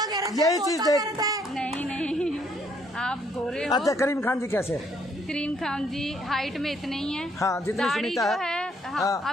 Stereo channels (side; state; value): both; normal; correlation 0.68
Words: यही चीज देख। नहीं, आप गोरे हो। अच्छा, करीम खान जी कैसे? करीम खान जी हाइट में इतने ही हैं। हाँ, जितनी दाढ़ी सुनीता जो है, हाँ, हाँ।